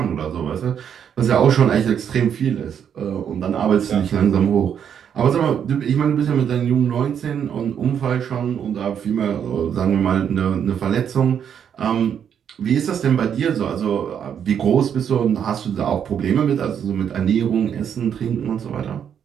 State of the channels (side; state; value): left; quieter; 8.4 dB